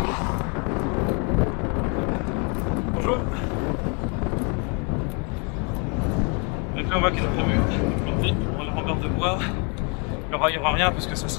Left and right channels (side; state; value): right; quieter; 31.7 dB